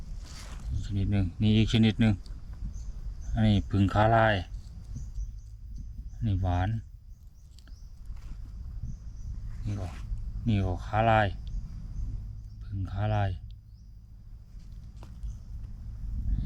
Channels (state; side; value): identical; both; correlation 1.00